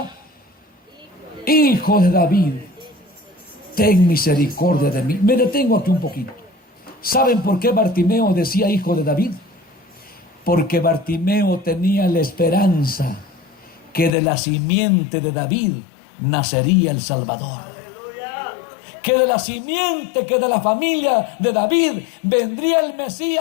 Hijo de David, ten misericordia de mí. Me detengo aquí un poquito. ¿Saben por qué Bartimeo decía hijo de David? Porque Bartimeo tenía la esperanza que de la simiente de David nacería el Salvador. Que de la simiente, que de la familia de David vendría el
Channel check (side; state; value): right; drops out; at 14.2 s